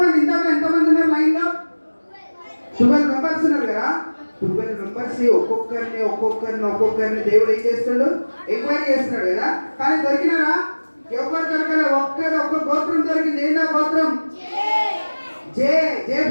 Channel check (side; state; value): both; inverted; correlation -1.00